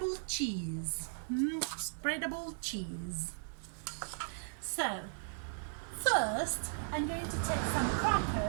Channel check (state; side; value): silent; left; digital silence